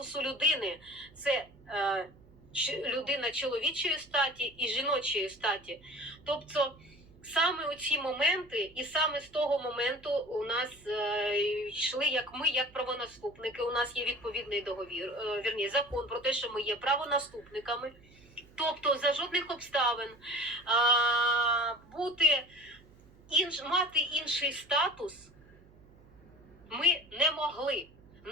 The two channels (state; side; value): noise; right; hum, 26 dB below the sound